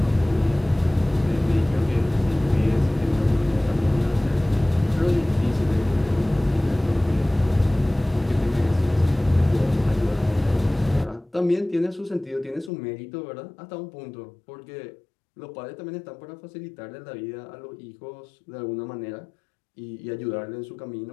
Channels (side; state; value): right; drops out; at 12.7 s